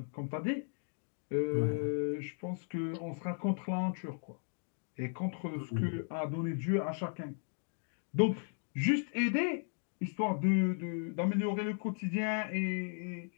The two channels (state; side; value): silent; right; 54 dB below the other